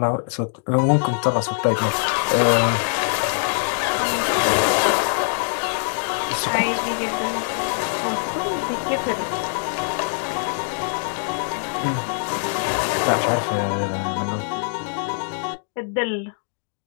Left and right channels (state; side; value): silent; right; digital silence